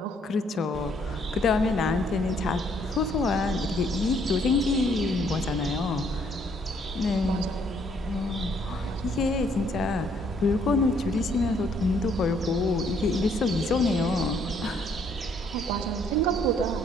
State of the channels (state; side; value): normal; both; correlation 0.66